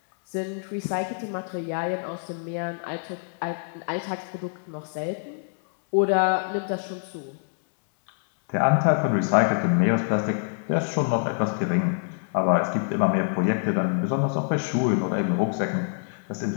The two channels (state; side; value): silent; right; 61 dB below the other